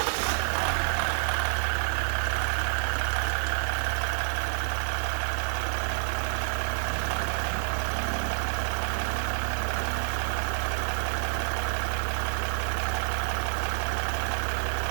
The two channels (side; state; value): left; silent; 59 dB below the other